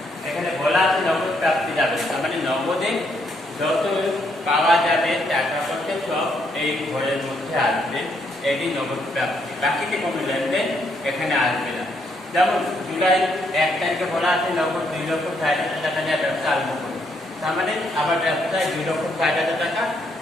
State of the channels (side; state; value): both; normal; correlation 0.73